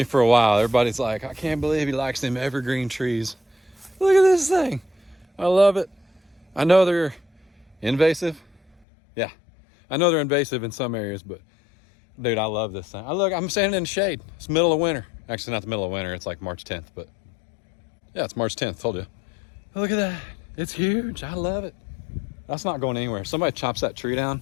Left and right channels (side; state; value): right; drops out; at 8.7 s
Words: for a while, everybody's like, I can't believe he likes them evergreen trees. Look at this thing. I love it. I know they're invasive. Yeah, I know they're invasive in some areas, but dude, I love this thing. I'm standing in the shade. It's middle of winter. Actually, not the middle of winter. It's like March 10th, but yeah, it's March 10th. Told you. Look at that. It's huge. I love it. That's not going anywhere. If somebody chops that tree down,